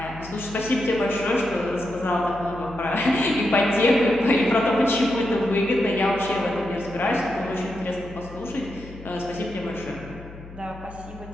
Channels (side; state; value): left; noise; hum, 16 dB below the sound